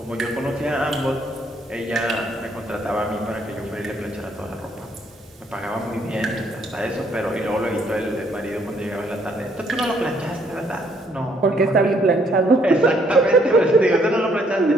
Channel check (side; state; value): both; normal; correlation 0.68